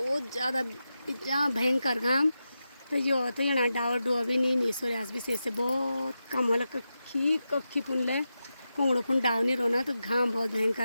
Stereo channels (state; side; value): inverted; both; correlation -0.90